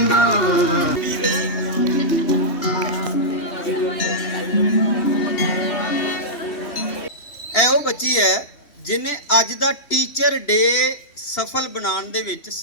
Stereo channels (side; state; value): right; late; 3.1 ms